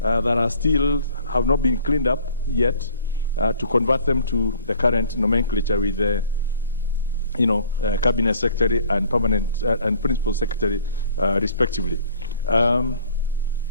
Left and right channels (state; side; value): inverted; both; correlation -0.53